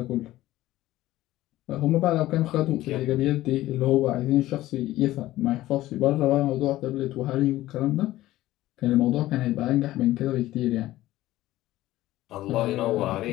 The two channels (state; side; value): quieter; right; 15.8 dB